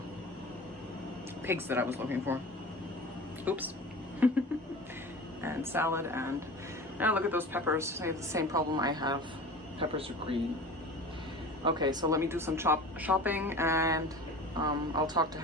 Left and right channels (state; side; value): normal; both; correlation 0.36